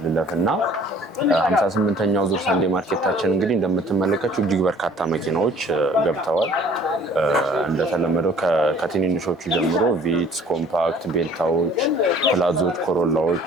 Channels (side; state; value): both; normal; correlation 0.52